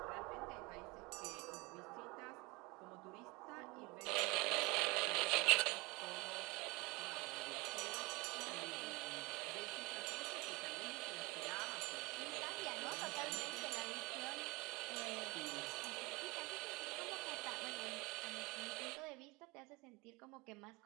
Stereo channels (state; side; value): quieter; left; 25.5 dB